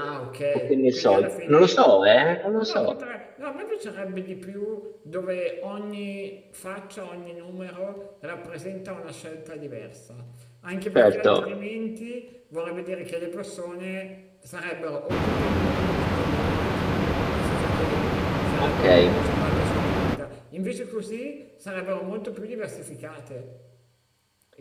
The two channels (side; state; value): both; identical; correlation 1.00